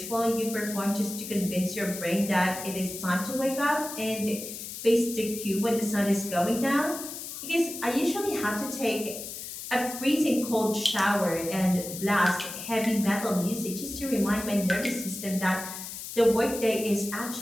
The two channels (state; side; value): noise; left; hiss, 9 dB below the sound